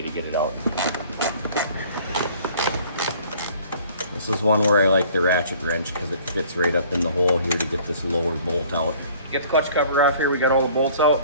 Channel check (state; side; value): inverted; both; correlation -0.53